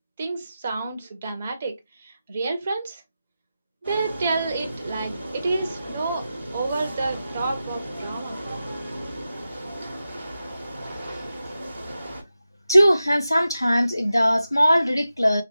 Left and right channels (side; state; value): both; inverted; correlation -0.92